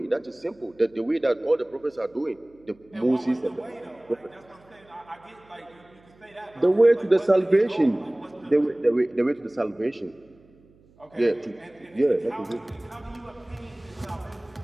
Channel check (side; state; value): right; noise; hum, 29 dB below the sound